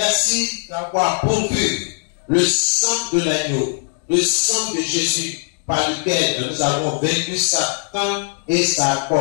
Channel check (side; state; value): right; silent; 66 dB below the other